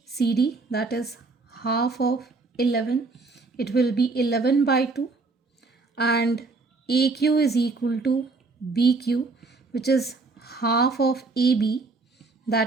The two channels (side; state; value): left; quieter; 3.8 dB